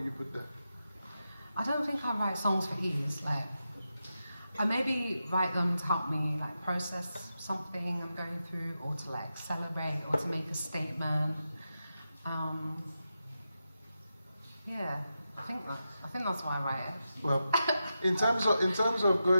you put there? I don't think I write songs for ease. Like, I maybe write them to help me like process something I'm going through, or to like celebrate, or to make a statement. Yeah, I think that's why I write it. Well, in terms of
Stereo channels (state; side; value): inverted; both; correlation -0.89